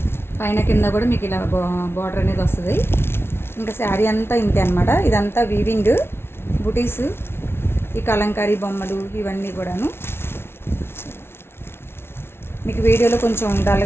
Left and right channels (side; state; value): right; late; 0.12 ms